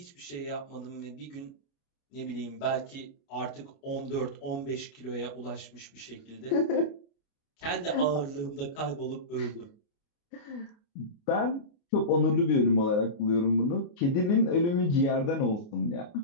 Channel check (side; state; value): right; late; 29 ms